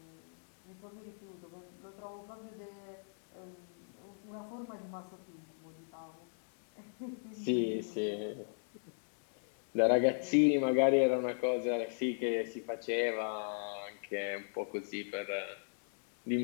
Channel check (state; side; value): silent; right; digital silence